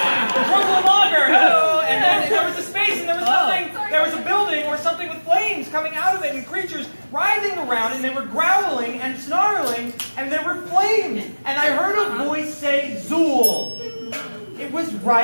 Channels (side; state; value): both; inverted; correlation -1.00